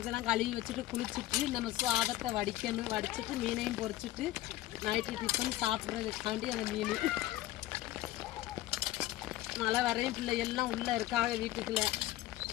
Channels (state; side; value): quieter; right; 15.4 dB